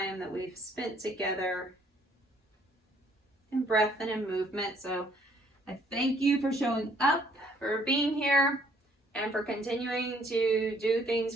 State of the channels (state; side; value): normal; both; correlation 0.64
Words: that we've spent together in breath and in movement. So I thank you for showing up, for being here, and for continuing to do